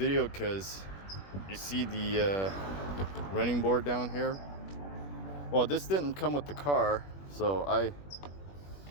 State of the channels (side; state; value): right; late; 21 ms